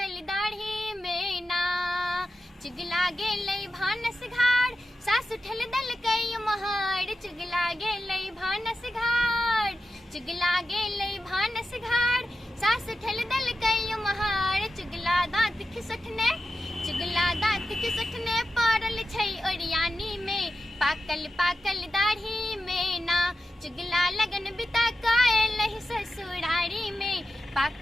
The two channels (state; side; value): normal; both; correlation 0.91